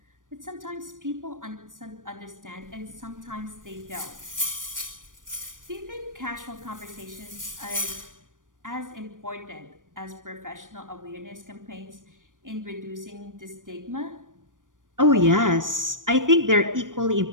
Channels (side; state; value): left; late; 0.88 ms